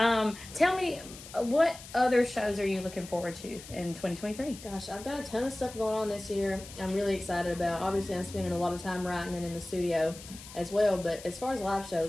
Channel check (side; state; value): left; noise; hiss, 15 dB below the sound